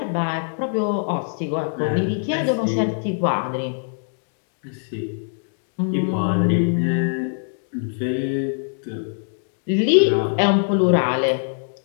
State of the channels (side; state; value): right; silent; digital silence